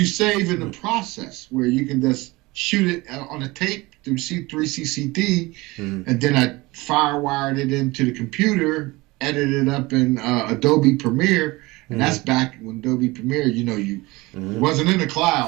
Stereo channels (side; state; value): left; quieter; 22.0 dB